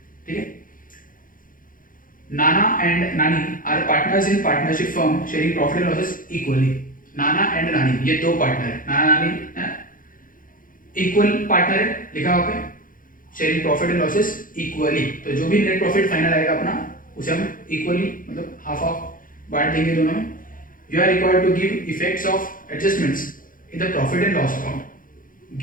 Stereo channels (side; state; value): right; late; 0.40 ms